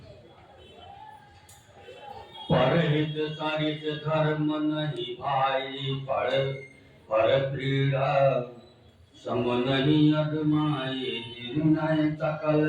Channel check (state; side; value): identical; both; correlation 1.00